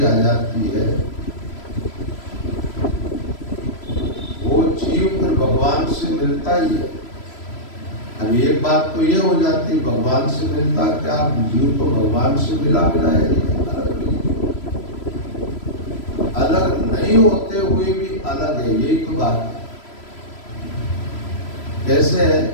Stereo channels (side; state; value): right; late; 3.0 ms